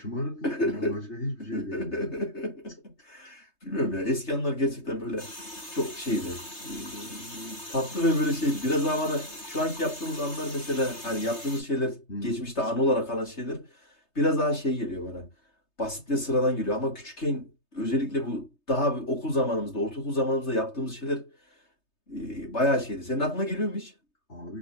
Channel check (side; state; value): right; late; 3.3 ms